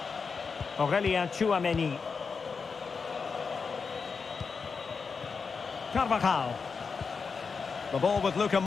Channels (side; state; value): right; quieter; 5.2 dB